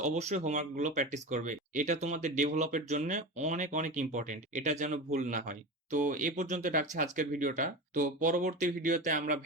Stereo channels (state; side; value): normal; both; correlation 0.26